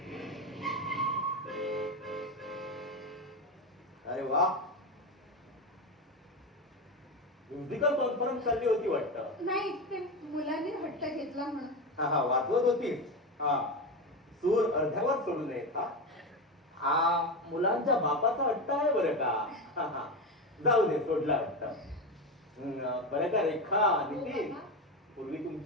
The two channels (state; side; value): normal; both; correlation 0.17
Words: अरे वा, म्युझिकल कॉन्फरन्स चालली होती वाटतं. नाही, ते मुलांनी हट्ट घेतला म्हणून. हा हा, वाजवत होतीस. हा, सूर अर्ध्यावर सोडू नयेत. हा हा, मुलांच्या बापाचा हट्ट आहे बरं का. हा हा, जाऊ दे, सोडला वाटतं. बरं का रेखा, नितीन, पूर्वी